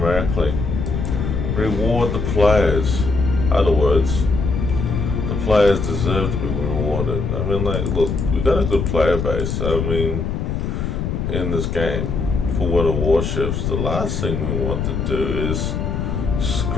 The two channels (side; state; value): left; noise; rumble, 2 dB below the sound